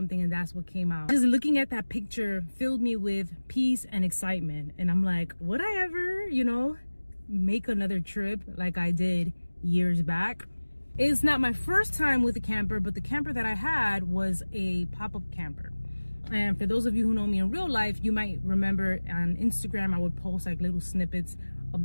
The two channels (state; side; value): inverted; both; correlation -1.00